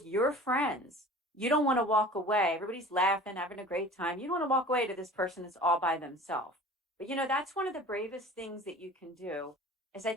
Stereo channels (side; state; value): both; normal; correlation 0.42